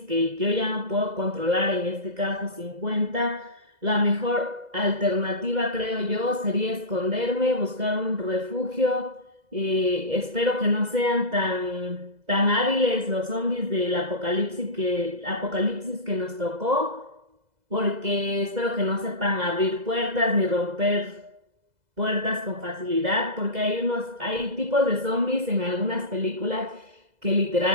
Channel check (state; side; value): late; left; 2.0 ms